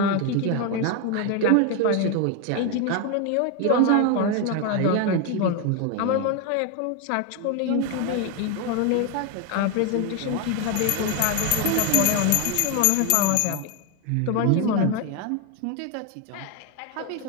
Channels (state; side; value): different; both; correlation 0.02